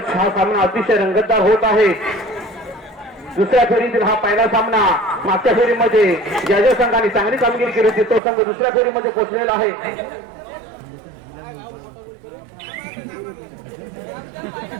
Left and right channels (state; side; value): drops out; left; at 8.2 s